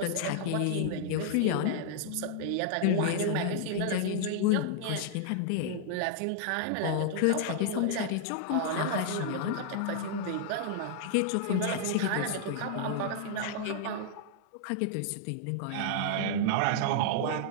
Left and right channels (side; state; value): both; different; correlation -0.01